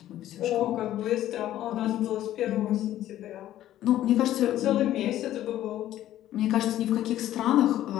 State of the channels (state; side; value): quieter; right; 13.0 dB